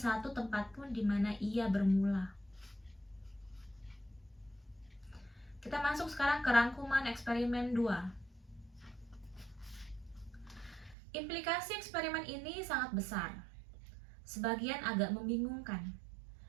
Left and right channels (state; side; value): drops out; left; at 11.0 s